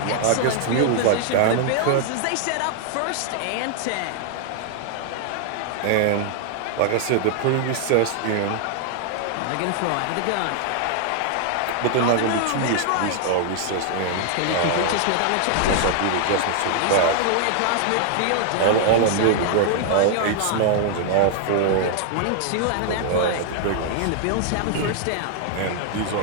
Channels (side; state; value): both; different; correlation 0.00